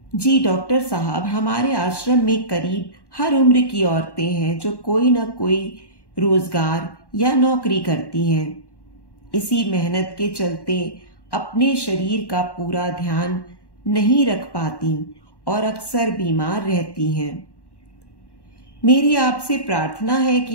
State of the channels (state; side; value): late; right; 1.1 ms